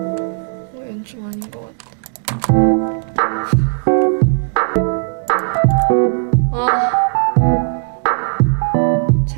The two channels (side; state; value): left; silent; digital silence